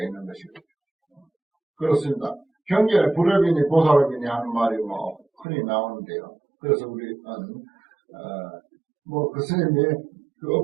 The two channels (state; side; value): drops out; left; at 5.5 s